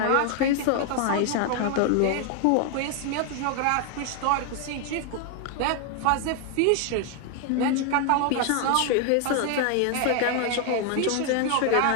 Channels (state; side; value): different; both; correlation 0.00